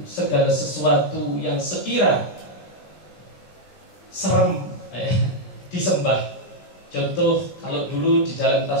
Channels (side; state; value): right; late; 20 ms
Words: segala sesuatu yang sekira serem disembah. Contoh, kalau dulu di dalam